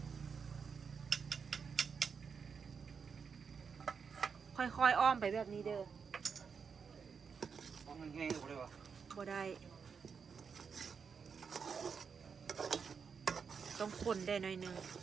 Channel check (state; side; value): quieter; left; 6.1 dB